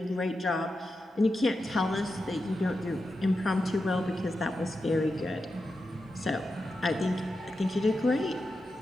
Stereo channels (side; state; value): both; normal; correlation 0.89